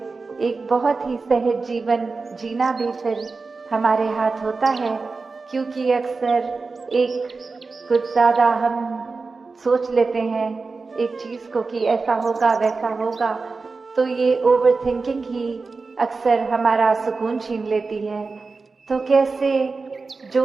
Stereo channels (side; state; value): left; quieter; 4.1 dB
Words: एक बहुत ही सहज जीवन जीना भी फिर हमारे हाथ होता है। क्योंकि अक्सर एक कुछ ज्यादा हम सोच लेते हैं एक चीज को कि ऐसा होगा वैसा होगा, तो ये ओवर थिंकिंग ही अक्सर हमारा सुकून छीन लेती है। तो कैसे